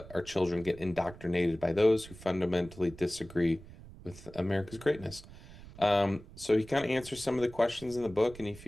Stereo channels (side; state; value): right; noise; rumble, 18 dB below the sound